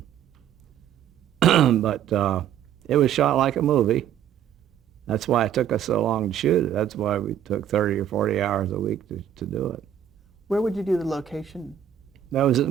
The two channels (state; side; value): quieter; left; 9.9 dB